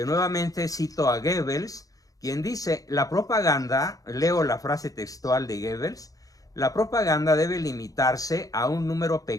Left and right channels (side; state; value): right; late; 0.17 ms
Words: cito a Goebbels, quien dice, la propaganda, leo la frase textual de Goebbels, la propaganda debe limitarse a un número